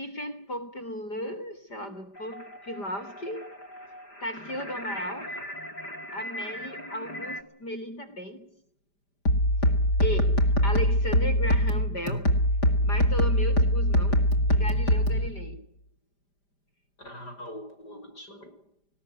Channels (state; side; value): late; right; 5.0 ms